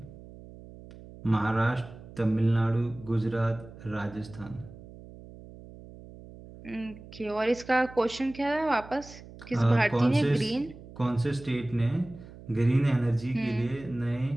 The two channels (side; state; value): right; noise; hum, 17 dB below the sound